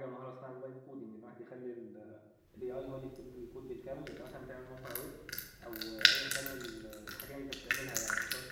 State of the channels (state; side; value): identical; both; correlation 1.00